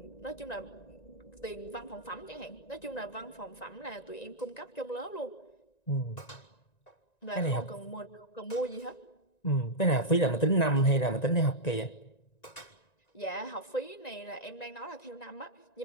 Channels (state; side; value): late; right; 1.9 ms